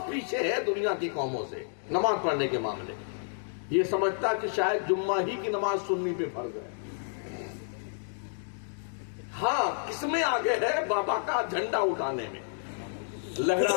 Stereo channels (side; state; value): right; silent; digital silence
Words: پیچھے ہے دنیا کی قوموں سے نماز پڑھنے کے معاملے. یہ سمجھتا کہ شاید جمعہ ہی کی نماز سنی پہ فرض ہے. ہاں، کس میں آگے ہے؟ بابا کا جھنڈا اٹھانے میں،